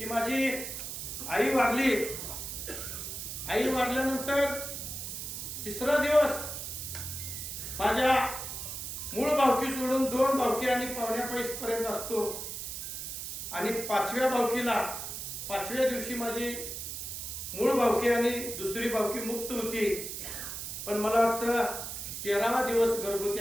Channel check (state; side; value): noise; right; hiss, 6 dB below the sound